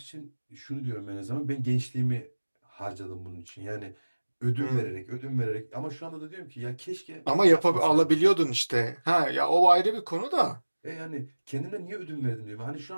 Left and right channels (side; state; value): both; inverted; correlation -1.00